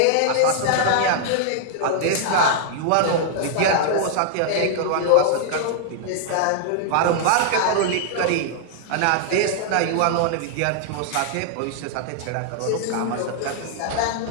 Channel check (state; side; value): different; both; correlation -0.01